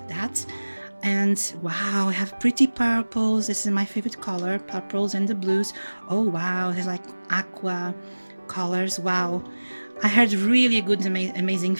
that. And wow, I have pretty purples. This is my favorite color, purples and the blues. Oh wow, there's like aqua colors. Wow, I heard really good amazing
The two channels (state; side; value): inverted; both; correlation -1.00